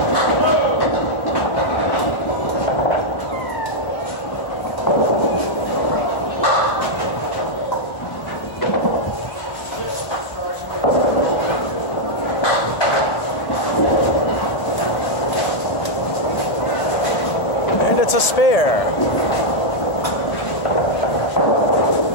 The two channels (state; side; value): late; right; 1.7 ms